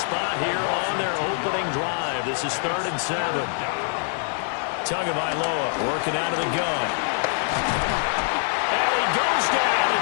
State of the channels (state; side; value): silent; right; 61 dB below the other